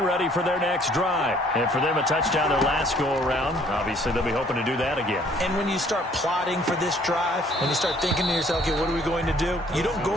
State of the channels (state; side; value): normal; both; correlation 0.59